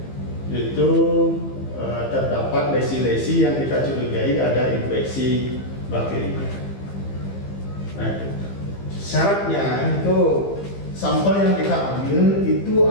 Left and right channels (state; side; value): late; right; 15 ms